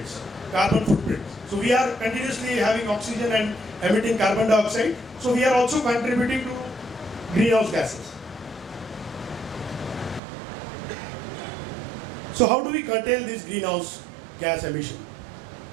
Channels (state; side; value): drops out; left; at 10.2 s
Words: carbon footprints. So we are continuously having oxygen and emitting carbon dioxide. So we are also contributing to greenhouse gases. So how do we curtail this greenhouse gas emission?